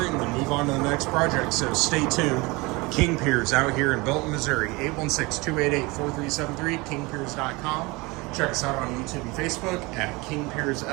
and then move on to the next project. So stay tuned. King Piers out here in Belton, Missouri, 816-288-4373, kingpiers.com. Check us out on YouTube and Facebook at King Piers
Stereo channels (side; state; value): left; quieter; 24.4 dB